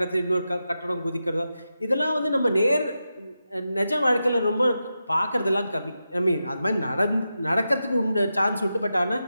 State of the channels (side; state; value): both; inverted; correlation -0.89